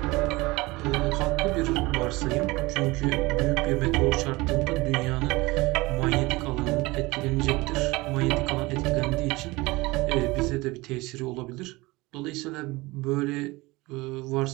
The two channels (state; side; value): quieter; left; 22.0 dB